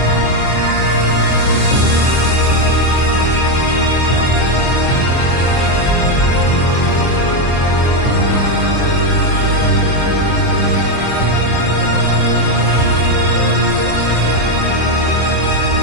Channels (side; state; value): right; late; 24 ms